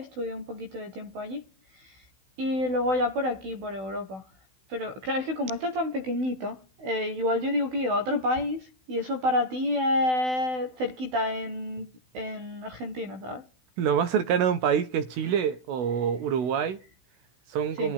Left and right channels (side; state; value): left; late; 16 ms